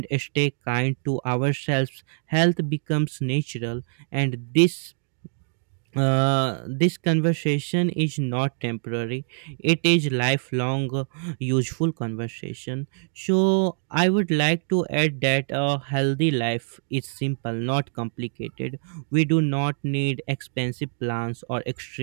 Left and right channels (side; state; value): left; silent; digital silence